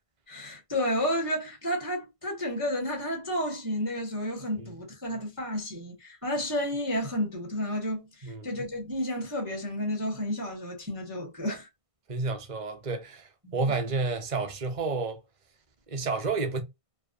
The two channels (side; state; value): left; late; 1.5 ms